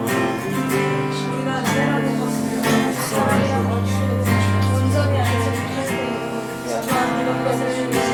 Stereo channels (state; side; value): identical; both; correlation 1.00